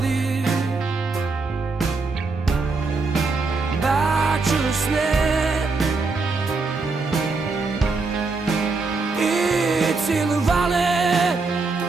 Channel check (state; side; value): quieter; left; 4.0 dB